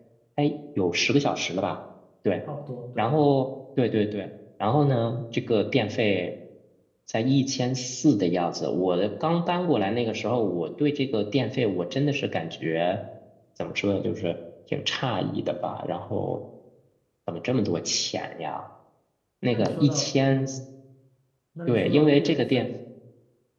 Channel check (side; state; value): both; identical; correlation 1.00